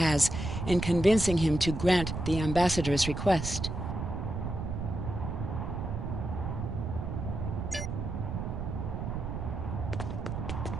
in convincing him to grant the ambassador's request.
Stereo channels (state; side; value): noise; right; rumble, 4 dB below the sound